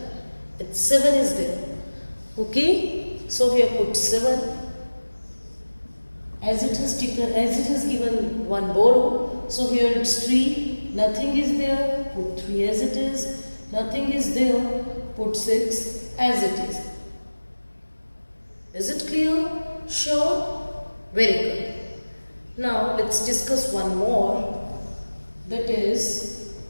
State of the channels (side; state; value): both; inverted; correlation -1.00